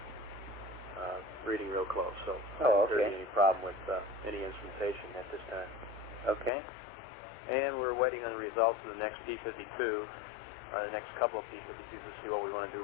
reading real close. So I don't see any problem with any instrumentation at this time. Okay. And we're waiting on the results of the next P52, or the next couple of P52s to see what we want to do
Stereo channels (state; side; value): drops out; right; at 6.5 s